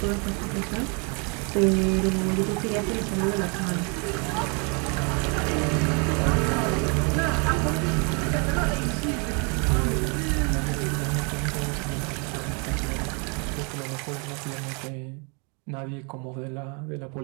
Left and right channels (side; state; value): left; quieter; 34.6 dB